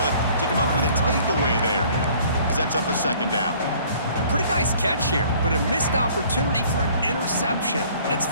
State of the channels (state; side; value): inverted; both; correlation -0.55